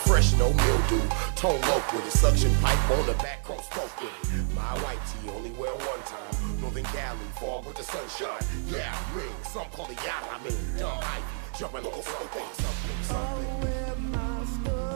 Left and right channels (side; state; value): left; silent; digital silence